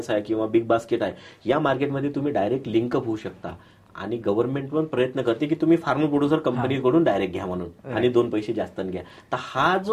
आहे किंवा बिग बास्केट आहे, या मार्केटमध्ये तुम्ही डायरेक्ट लिंकअप होऊ शकता. आणि गव्हर्नमेंट पण प्रयत्न करते की तुम्ही फार्मर प्रोड्युसर कंपनीकडून डायरेक्ट घ्या म्हणून, आणि 2 पैसे जास्त घ्या. तर हा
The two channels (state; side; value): identical; both; correlation 1.00